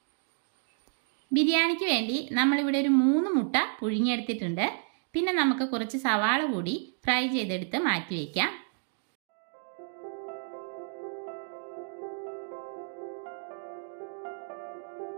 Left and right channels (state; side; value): silent; left; digital silence